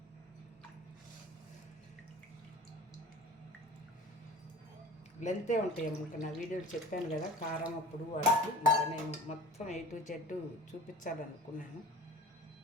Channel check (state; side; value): normal; both; correlation 0.42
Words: లెంతే ఉంటాయి అమ్మ. నా వీడియోలు చెప్పాను కదా కారం అప్పుడు వాటికి, ఇంకా నేను మొత్తం A to Z చూపించాలనుకున్నాను